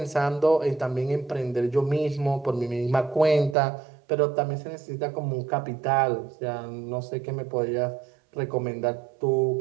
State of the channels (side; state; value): left; drops out; at 3.6 s